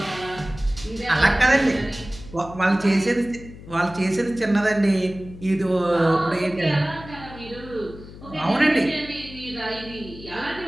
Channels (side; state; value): left; noise; hum, 16 dB below the sound